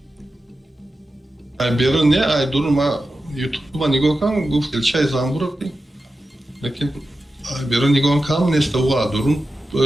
Ай берун не ай дурун ма ютуб нигоҳ кардам гуфт илчаи замбур. Лекин ай берун нигоҳ кардам неста ва дурун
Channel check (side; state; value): both; normal; correlation 0.92